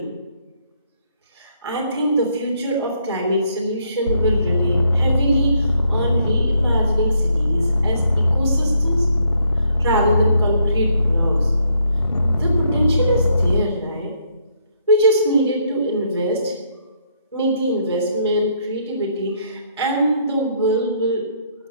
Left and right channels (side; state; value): both; inverted; correlation -0.72